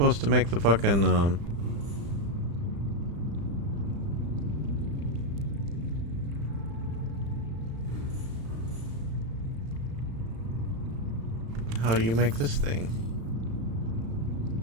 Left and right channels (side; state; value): left; late; 35 ms